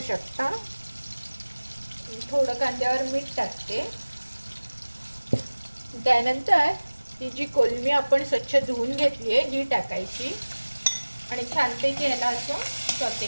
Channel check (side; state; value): both; inverted; correlation -1.00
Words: शकता. थोडं कांद्यावर मीठ टाकते. त्यानंतर ही जी कोलमी आपण स्वच्छ धुवून घेतली आहे ही टाकायची आणि छानपैकी ह्याला असं सॉटे